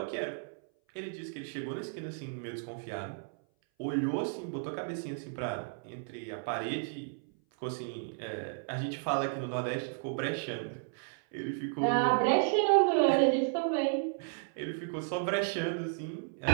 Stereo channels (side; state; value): left; silent; 56 dB below the other